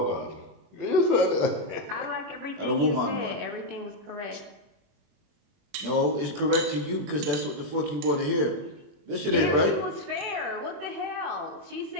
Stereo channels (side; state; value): left; late; 21 ms